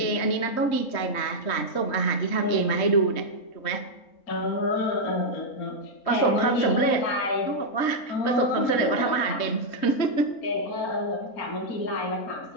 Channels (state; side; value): late; right; 3.2 ms